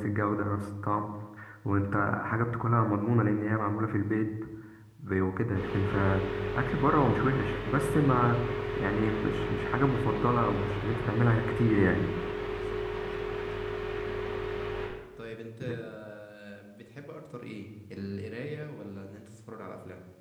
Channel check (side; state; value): both; identical; correlation 1.00